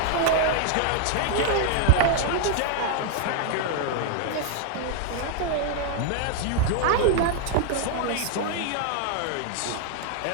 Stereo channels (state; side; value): different; both; correlation -0.01